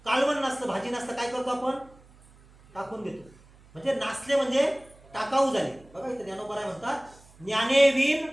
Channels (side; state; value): right; noise; hum, 26 dB below the sound